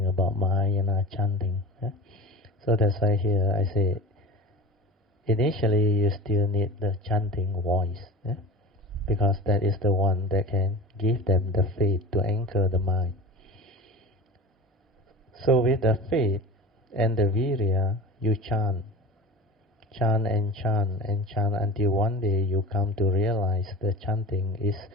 about Mahayana chanting. So that's why here I say, initially you still need the chanting voice, because that is the one that can give them the faith to anchor the mind. So with the faith and the virya, you chant and chant and chant until one day you come to realize the chanting is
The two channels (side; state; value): both; normal; correlation 0.33